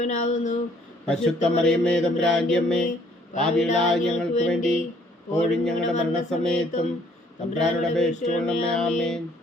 പരിശുദ്ധ മറിയമേ തമ്പുരാന്റെ അമ്മേ, പാപികളായ ഞങ്ങൾക്ക് വേണ്ടി ഇപ്പോഴും ഞങ്ങളുടെ മരണസമയത്തും തമ്പുരാനോട് അപേക്ഷിച്ചുകൊള്ളണമേ. ആമേൻ.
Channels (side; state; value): both; normal; correlation 0.62